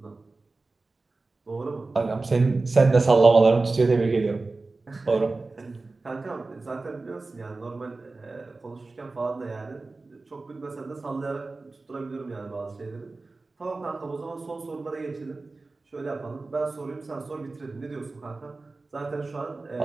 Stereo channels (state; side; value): quieter; left; 3.5 dB